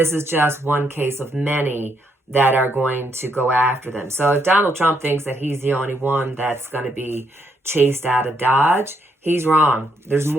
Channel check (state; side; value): normal; both; correlation 0.75